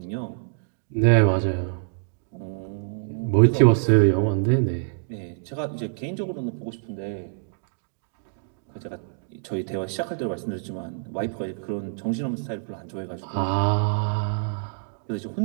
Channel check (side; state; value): left; silent; digital silence